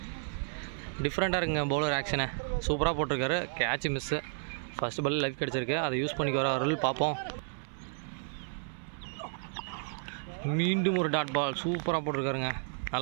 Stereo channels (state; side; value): silent; left; 56 dB below the other